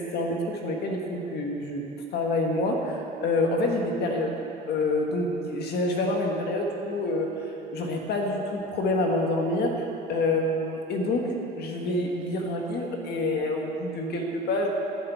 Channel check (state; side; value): normal; both; correlation 0.34